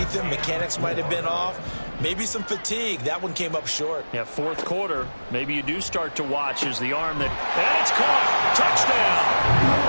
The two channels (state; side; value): inverted; both; correlation -1.00